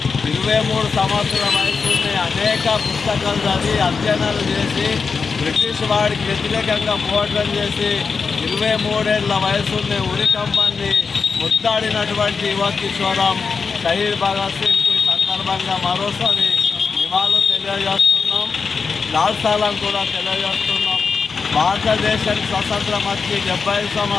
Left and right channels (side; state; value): right; quieter; 5.2 dB